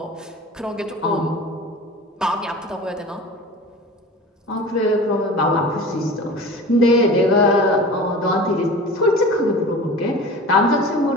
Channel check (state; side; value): normal; both; correlation 0.37